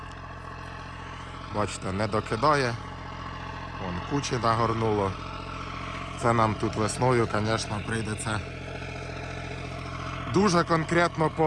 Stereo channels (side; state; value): both; identical; correlation 1.00